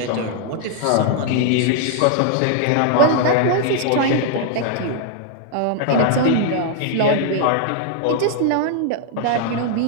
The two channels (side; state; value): both; different; correlation 0.00